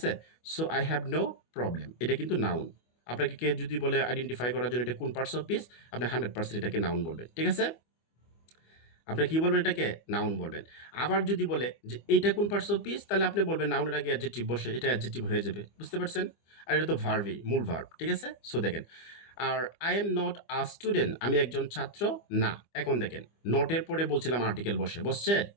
so I have no problem এটা কিন্তু নাউন আপনাকে কে যদি বলে আইডেন্টিফাই করার জন্য এটা কোন পার্টস অফ স্পিচ, আপনি 100% এটাকে নাউন বলবেন, ঠিক আছে? আপনি কি বলবেন? এটাকে নাউন বলবেন। আবার যদি বলে যে এইটা কোন পার্টস অফ স্পিচ, তাহলে আপনি বলবেন নাউনের আগে অ্যাডজেক্টিভ বসে, এটা অ্যাডজেক্টিভ হয়ে যাবে, বুঝতে পারছেন? আর এটা তো ভার্বই, মূল ভার্ব, ঠিক আছে? সো দেখেন, আর I am not a student, আমি একজন ছাত্র না। এখন দেখেন, নটের পরে বলছিলাম আর্টিকেল বসছে,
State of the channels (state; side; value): late; right; 25 ms